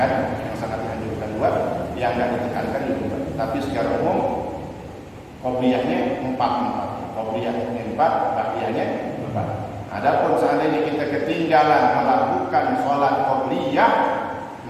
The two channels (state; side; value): identical; both; correlation 1.00